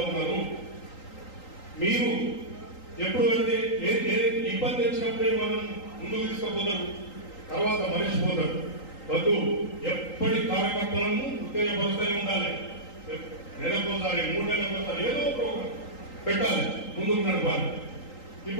ఉన్నారు. మీరు ఎప్పుడు వెళ్తే ఇబ్బంది వచ్చినప్పుడే మనం ముందుకు తీసుకుపోతారు, తర్వాత మరిచిపోతారు. వద్దు, ఎప్పటి కార్యకర్తలను ఉత్తేజపరుస్తూనే ఉండాలి. నెలకోసారి 3 నెలలకోసారి ఏదో ప్రోగ్రాం పెట్టాలి, ముందుకు నడపాలి.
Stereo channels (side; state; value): right; late; 3.8 ms